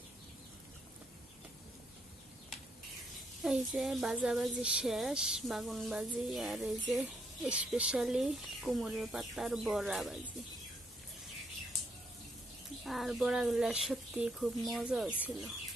এই যে ভাজাভাজি শেষ, বাগুন ভাজি। আর এই যে স্পেশালি কুমড়ের পাতার বড়া ভাজি। আর বড়াগুলা সত্যি খুব মজা হয়েছিল।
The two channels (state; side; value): normal; both; correlation 0.73